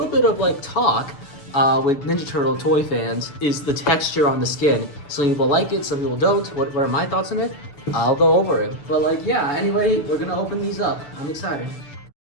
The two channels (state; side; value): late; right; 6.8 ms